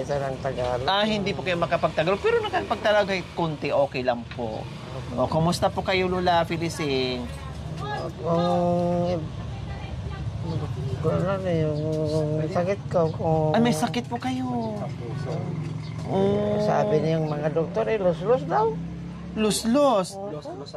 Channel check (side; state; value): both; identical; correlation 1.00